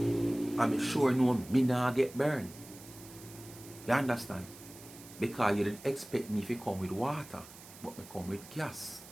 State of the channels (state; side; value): noise; right; hiss, 18 dB below the sound